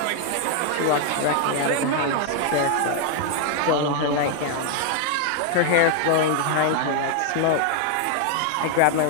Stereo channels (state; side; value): different; both; correlation 0.00